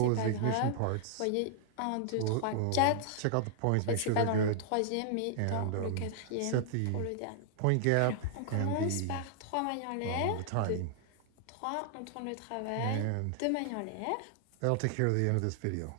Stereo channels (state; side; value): different; both; correlation -0.01